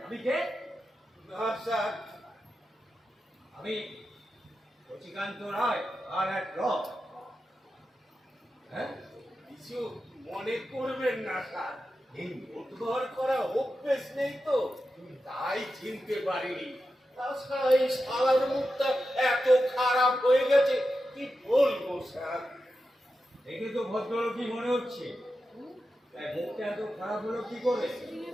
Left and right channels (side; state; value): both; normal; correlation 0.90